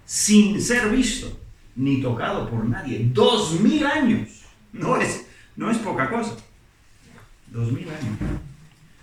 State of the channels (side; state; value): both; identical; correlation 1.00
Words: sin ser visto ni tocado por nadie. 2000 años. No es poca cosa. 2000 años.